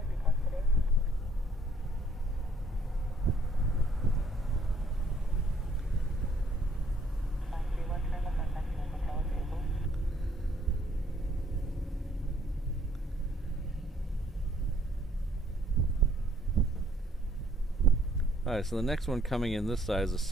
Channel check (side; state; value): both; normal; correlation 0.63